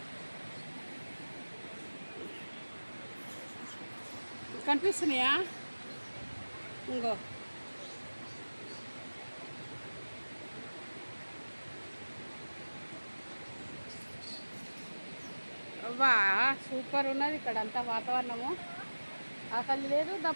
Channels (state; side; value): inverted; both; correlation -1.00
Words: కనిపిస్తున్నాయా? ఇంకో అవ్వా సూపర్ ఉన్నది ఇక్కడ అంతా వాతావరణము. ఆకలి లేదు,